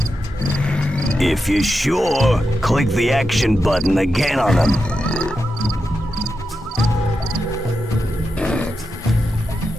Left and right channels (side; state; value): both; normal; correlation 0.88